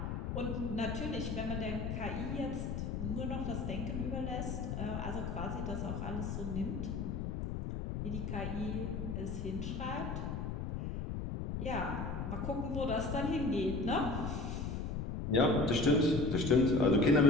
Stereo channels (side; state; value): left; noise; rumble, 3 dB below the sound